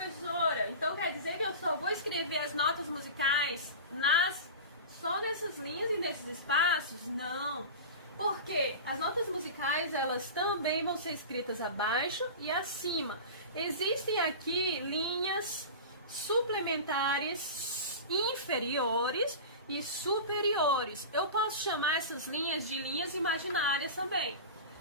então quer dizer que eu só vou escrever as notas musicais só nessas linhas e nesses espaços? Não. Porque as notas musicais, elas também vão ser escritas abaixo e acima. Existem aqui linhas suplementares inferiores e superiores. Eu posso chamar essas linhas de linhas imaginárias também.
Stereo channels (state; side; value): inverted; both; correlation -0.30